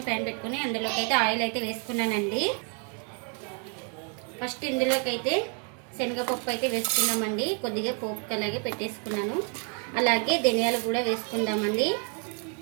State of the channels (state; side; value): quieter; left; 38.7 dB